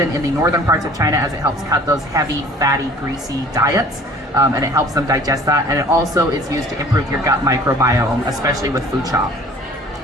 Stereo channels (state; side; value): normal; both; correlation 0.50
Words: in the northern parts of China, as it helps cut those heavy, fatty, greasy diets, and it helps them digest that. And it also is used to improve your gut microbiome, especially with food chop.